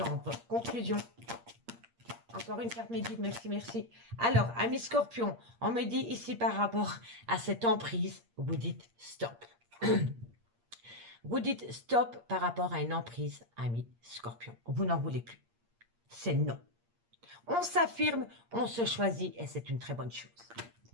Conclusion. Encore une carte médique, merci, merci. Alors, amis Scorpion, on me dit ici par rapport à cette emprise, vous dites stop. Vous dites stop par rapport à une emprise, amis Scorpion. Vous n'en voulez plus. C'est non. On s'affirme, on se choisit et c'est une très bonne chose.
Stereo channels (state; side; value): late; left; 8.6 ms